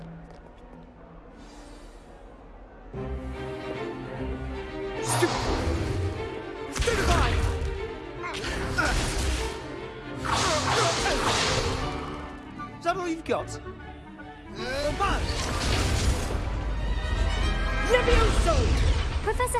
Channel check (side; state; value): both; identical; correlation 1.00